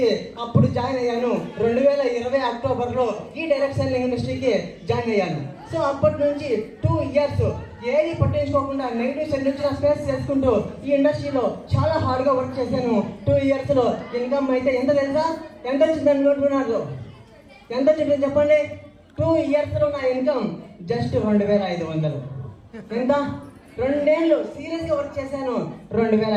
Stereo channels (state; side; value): identical; both; correlation 1.00